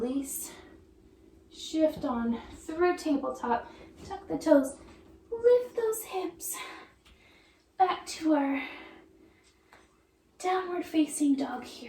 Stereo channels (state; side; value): identical; both; correlation 1.00